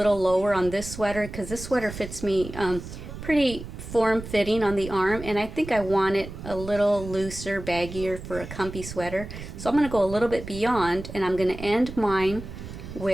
lower on this sweater because this sweater fits me pretty form-fitting on the arm, and I think I want it a little looser, baggier for a comfy sweater. So I'm going to go a little bit beyond, and I'm going to end mine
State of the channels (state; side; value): noise; right; rumble, 11 dB below the sound